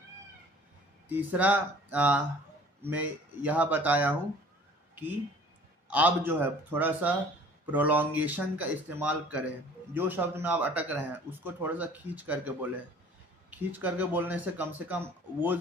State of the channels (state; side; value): normal; both; correlation 0.50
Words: तीसरा मैं यह बताया हूँ कि आप जो है थोड़ा सा प्रोलॉन्गेशन का इस्तेमाल करें। जो शब्द में आप अटक रहे हैं उसको थोड़ा सा खींच करके बोलें। खींच करके बोलने से कम वो